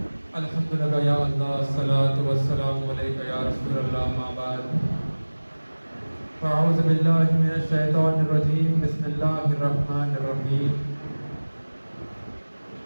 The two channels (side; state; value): both; inverted; correlation -1.00